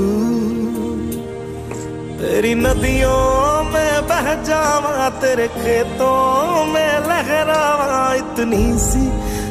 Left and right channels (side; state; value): both; identical; correlation 1.00